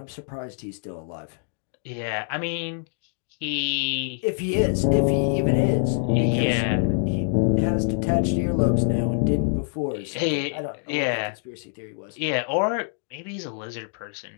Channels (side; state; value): right; silent; digital silence